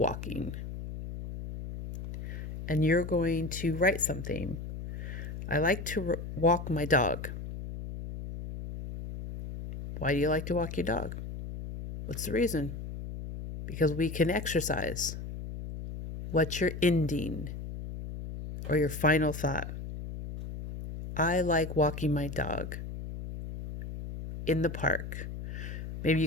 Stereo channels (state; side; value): noise; left; hum, 8 dB below the sound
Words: And you're going to write something. I like to walk my dog. Why do you like to walk your dog? What's the reason? Because we can exercise. What's your ending or your final thought? I like walking my dog in the park. Maybe